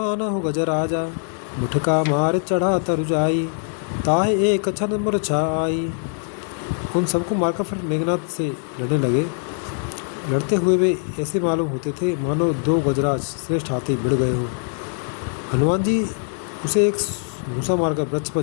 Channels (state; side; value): silent; right; 57 dB below the other